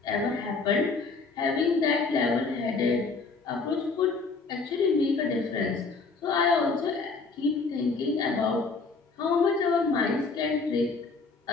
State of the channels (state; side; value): quieter; right; 4.3 dB